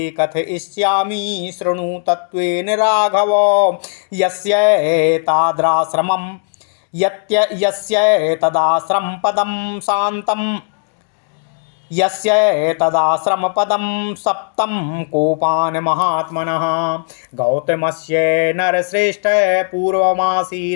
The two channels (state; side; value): silent; right; digital silence